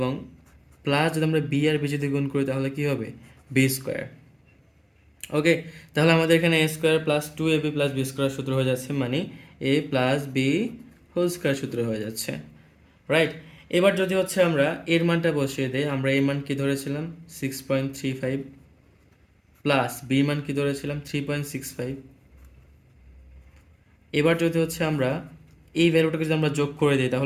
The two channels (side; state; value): both; identical; correlation 1.00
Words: প্লাস যদি আমরা বি আর বি যদি গুণ করি তাহলে কি হবে বি স্কোয়ার। ওকে, তাহলে আমাদের এখানে a square plus 2ab plus b square সূত্র হয়ে যাচ্ছে, মানে a plus b whole square সূত্র হয়ে যাচ্ছে, রাইট। এবার যদি হচ্ছে আমরা এর মানটা বসিয়ে দেই, আমরা এর মান কি ধরেছিলাম 6.35, প্লাস বি মান কি ধরেছিলাম 3.65। এবার যদি হচ্ছে আমরা এই ভ্যালুটাকে যদি আমরা যোগ করে দিই